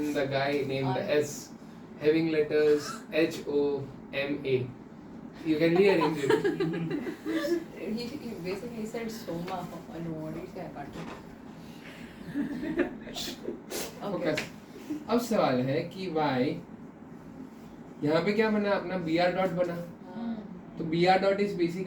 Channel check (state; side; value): identical; both; correlation 1.00